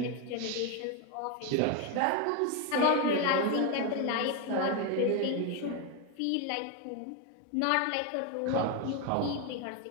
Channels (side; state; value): both; different; correlation 0.02